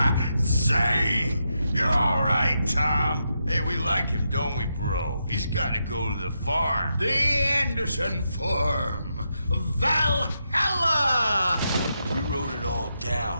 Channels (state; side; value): inverted; both; correlation -0.84